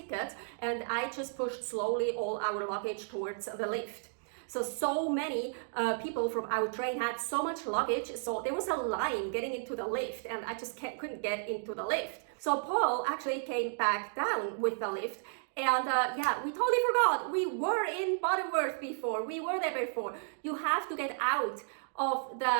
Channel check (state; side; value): silent; left; digital silence